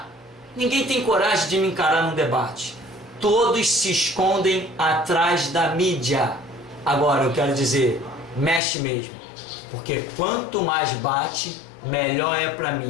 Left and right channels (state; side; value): drops out; right; at 8.6 s